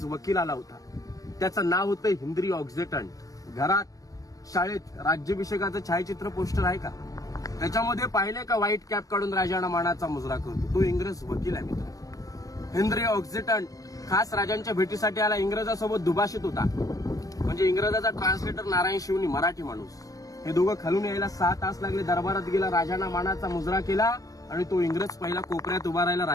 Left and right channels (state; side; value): late; right; 0.17 ms